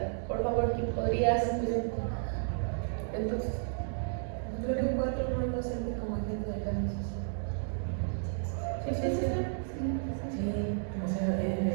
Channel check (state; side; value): silent; left; digital silence